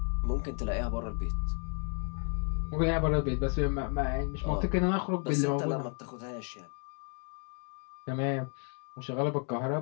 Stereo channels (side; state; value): right; quieter; 38.4 dB